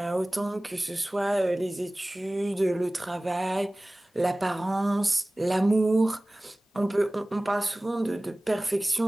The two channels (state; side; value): normal; both; correlation 0.98